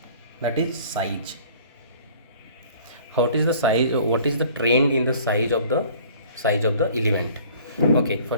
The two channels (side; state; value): both; inverted; correlation -0.51